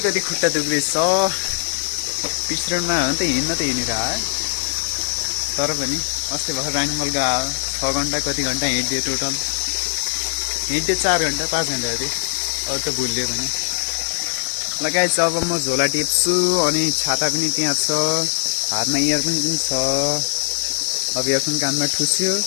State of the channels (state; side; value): silent; right; digital silence